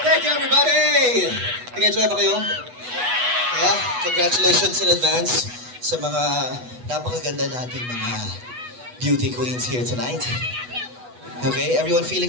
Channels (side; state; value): left; late; 8.1 ms